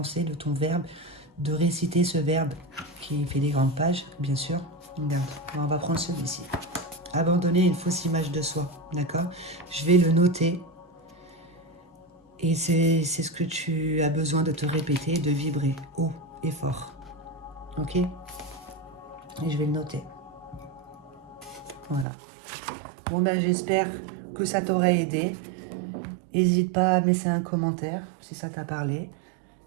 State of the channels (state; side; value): drops out; left; at 22.1 s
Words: de ton verbe, de réciter ce verbe qui fait des grandes pages, bien sûr. Regarde, on va prendre celui-ci. Abandonner une fausse image de soi, d'accord? Je vais le noter et c'est ce que tu as besoin de te répéter, de vibrer haut et fort. Ok? Et je vais le noter. Voilà. Bon ben j'espère que ça t'aura aidé. N'hésite pas à laisser un commentaire si ça t'a parlé.